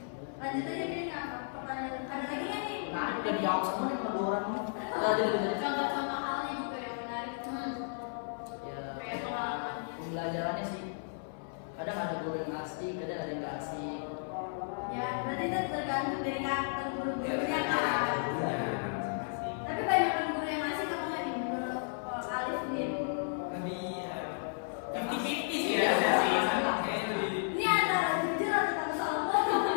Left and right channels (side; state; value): right; silent; 55 dB below the other